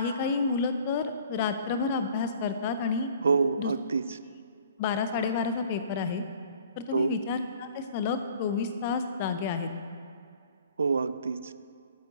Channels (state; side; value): inverted; both; correlation -0.51